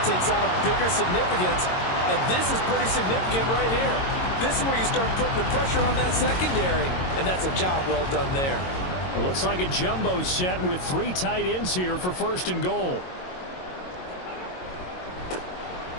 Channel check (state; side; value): late; right; 22 ms